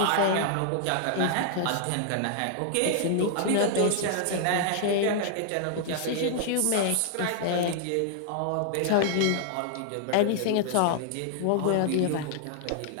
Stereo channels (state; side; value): different; both; correlation -0.01